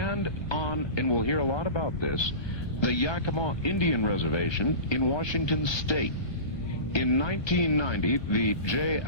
we'll hear a lot about this, the Yakima Indian Reservation in Washington State. In 1990, the J.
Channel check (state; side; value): late; right; 1.5 ms